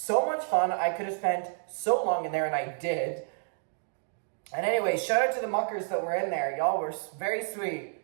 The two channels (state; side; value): silent; left; digital silence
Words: much fun. I could have spent so long in there, and I did. And anyway, shout out to the muckers that were in there. Y'all were very sweet.